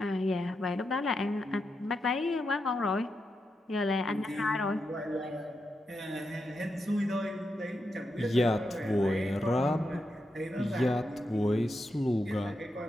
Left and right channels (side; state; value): both; normal; correlation 0.86